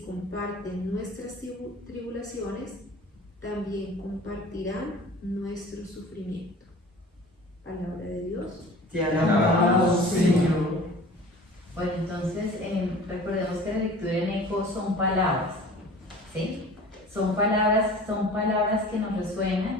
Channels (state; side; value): normal; both; correlation 0.43